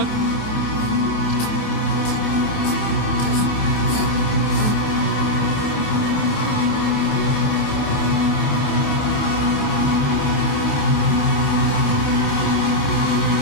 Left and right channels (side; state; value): right; late; 28 ms